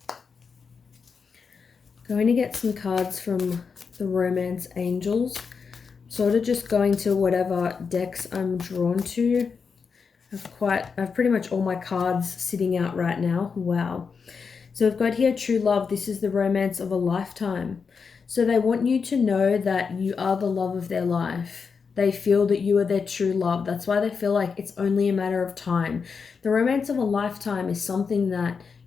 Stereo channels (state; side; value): quieter; right; 5.6 dB